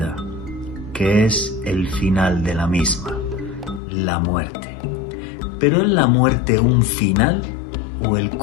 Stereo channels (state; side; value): drops out; right; at 3.8 s